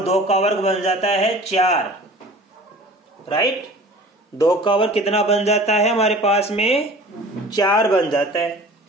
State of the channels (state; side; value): normal; both; correlation 0.43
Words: 2 का वर्ग बन जाता है 4। राइट, 2 का वर्ग कितना बन जाता है हमारे पास में 4 बन जाता है।